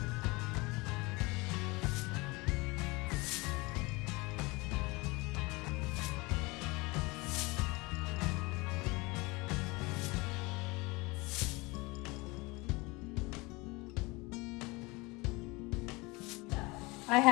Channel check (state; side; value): quieter; right; 24.6 dB